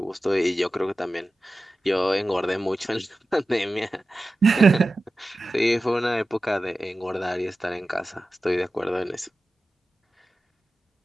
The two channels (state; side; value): normal; both; correlation 0.94